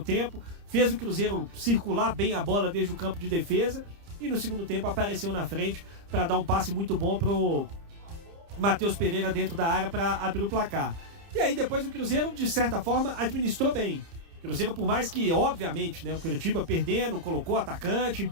tempo, fez o Cruzeiro circular bem a bola desde o campo de defesa e no segundo tempo apareceu na frente para dar um passe muito bom pro Matheus Pereira dentro da área para abrir o placar. E aí depois o Cruzeiro, de certa forma, administrou bem. O Cruzeiro, por mais que, obviamente, né, o Curitiba perdendo, colocou atacante,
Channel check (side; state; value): left; late; 30 ms